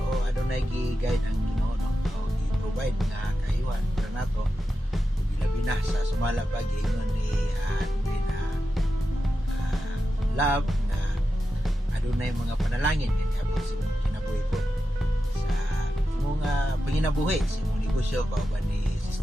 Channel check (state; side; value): normal; both; correlation 0.90